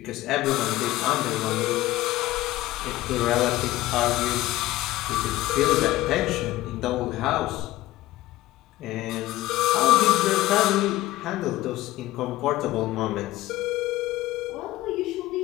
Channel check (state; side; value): quieter; right; 16.8 dB